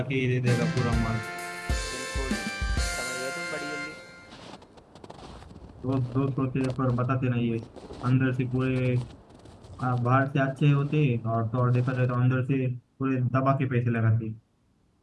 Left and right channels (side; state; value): both; identical; correlation 1.00